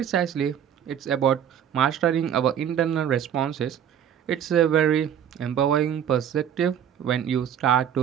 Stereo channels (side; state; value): left; quieter; 9.1 dB